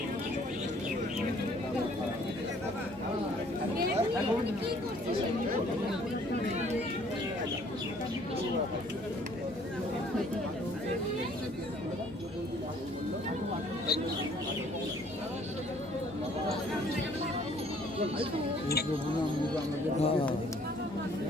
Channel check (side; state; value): both; normal; correlation 0.59